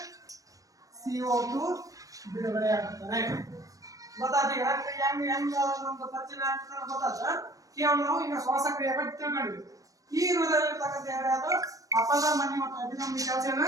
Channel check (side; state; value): left; late; 0.16 ms